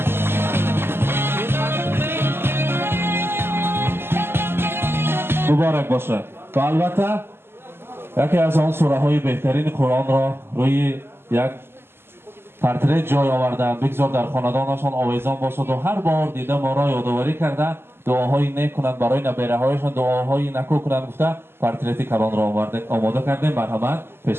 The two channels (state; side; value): late; left; 0.11 ms